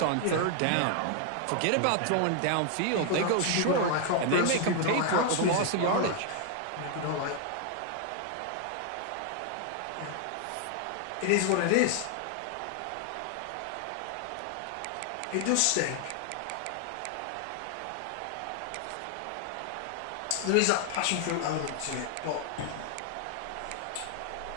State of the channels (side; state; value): both; different; correlation 0.00